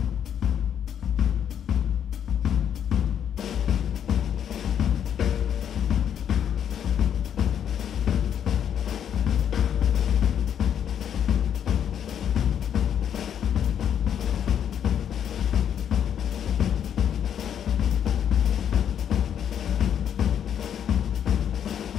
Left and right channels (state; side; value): quieter; right; 9.0 dB